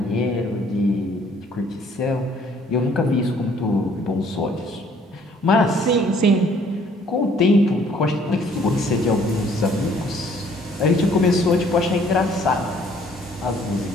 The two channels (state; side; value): normal; both; correlation 0.60